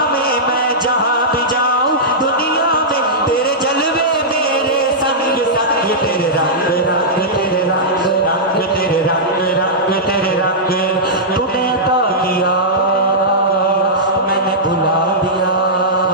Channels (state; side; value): normal; both; correlation -0.12